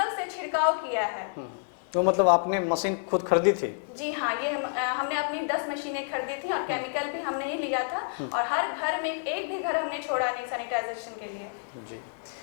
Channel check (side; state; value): right; silent; 59 dB below the other